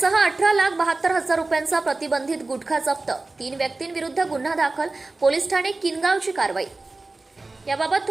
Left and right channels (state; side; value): quieter; left; 3.3 dB